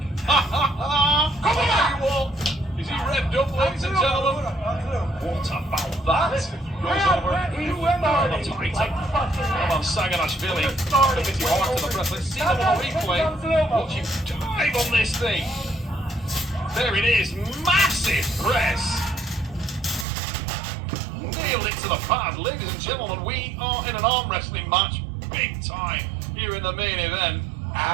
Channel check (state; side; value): drops out; left; at 20.1 s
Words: Come on, you all! Is he revved up, ladies and gentlemen? What about that? Goes over. That's a great take. Roman Saganashvili, committing hard to the press. Let's see them on replay. Watch him dive on this thing. There it is, massive press. Nailed it to the pad, ladies and gentlemen. We are in an arm wrestling match, big time, here in the main event.